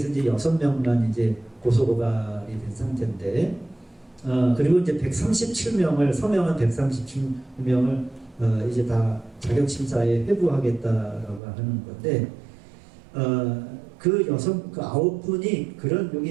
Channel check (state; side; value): drops out; left; at 11.4 s